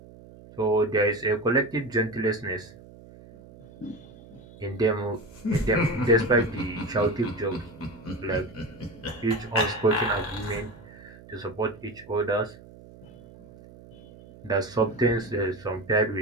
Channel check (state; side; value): noise; right; hum, 20 dB below the sound